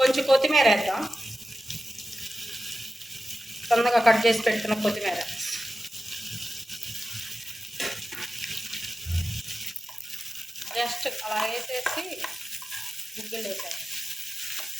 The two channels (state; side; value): normal; both; correlation 0.93